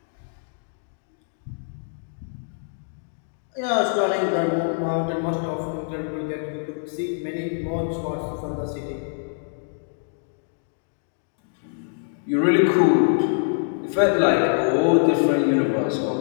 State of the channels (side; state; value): right; silent; digital silence